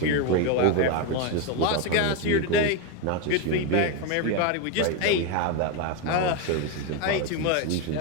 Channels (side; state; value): both; different; correlation 0.02